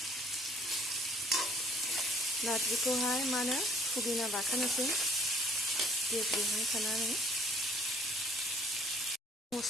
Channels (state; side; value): normal; both; correlation 0.58